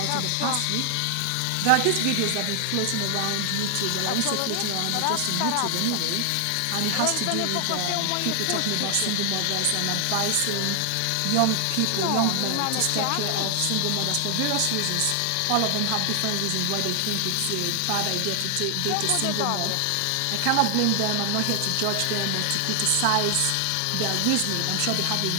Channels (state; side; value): different; both; correlation 0.00